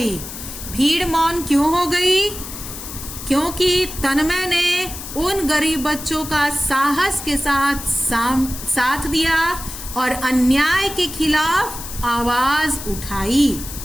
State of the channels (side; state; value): left; noise; hiss, 10 dB below the sound